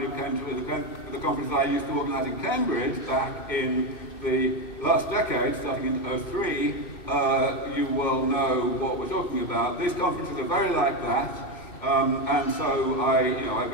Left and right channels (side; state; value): right; late; 2.6 ms